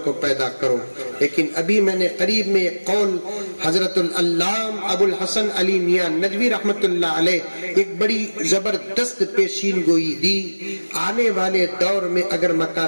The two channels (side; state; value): both; inverted; correlation -1.00